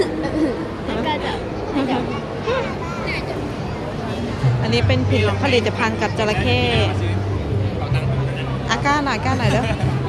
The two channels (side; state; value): both; identical; correlation 1.00